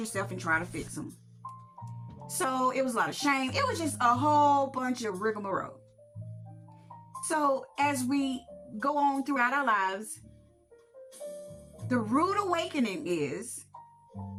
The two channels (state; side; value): identical; both; correlation 1.00